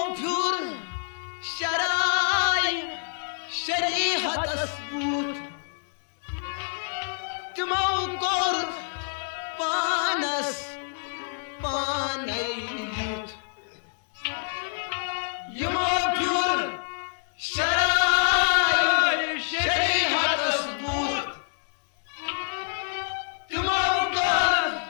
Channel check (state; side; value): silent; right; digital silence